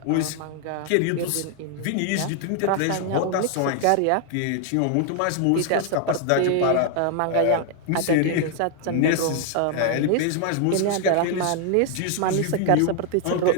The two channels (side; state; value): both; different; correlation 0.00